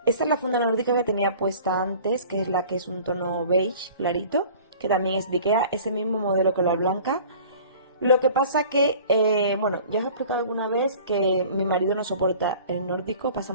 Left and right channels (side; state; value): both; inverted; correlation -0.46